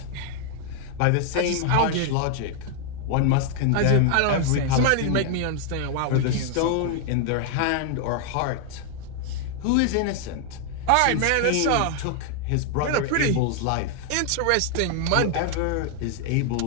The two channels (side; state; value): both; different; correlation 0.00